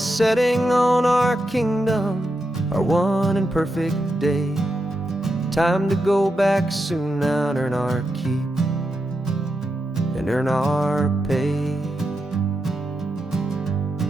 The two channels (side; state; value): both; normal; correlation 0.86